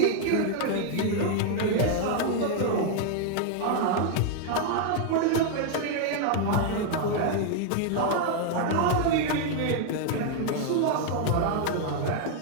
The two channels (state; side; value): different; both; correlation 0.00